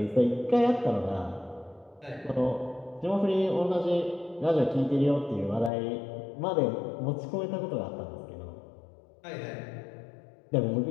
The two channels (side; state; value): right; drops out; at 5.7 s